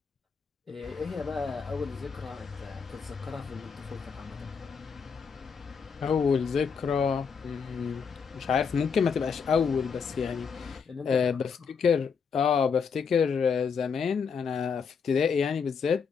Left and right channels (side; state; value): right; quieter; 6.0 dB